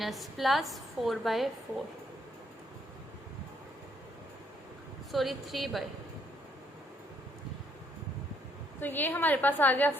प्लस 4/4, सॉरी 3/, तो ये हमारे पास आ गया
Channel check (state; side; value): normal; both; correlation 0.70